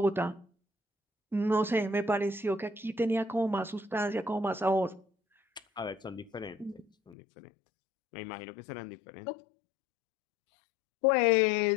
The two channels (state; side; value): drops out; right; at 7.2 s